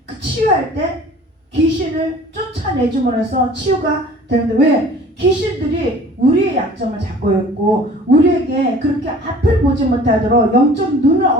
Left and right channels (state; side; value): normal; both; correlation 0.47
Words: 그 치유할 때 귀신을 쫓아내줌으로 해서 치유가 되는데, 왜? 귀신들이 우리의 약점을 잡고 있고 우리에게 그렇게 앞을 보지 못하도록 영적 눈을